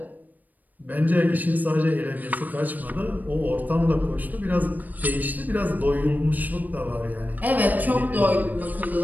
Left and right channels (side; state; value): left; late; 0.083 ms